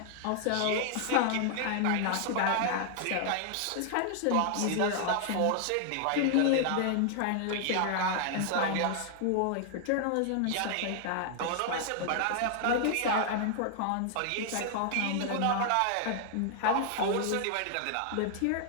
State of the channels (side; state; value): both; different; correlation 0.00